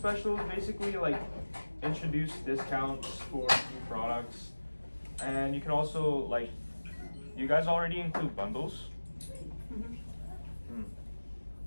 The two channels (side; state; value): both; inverted; correlation -1.00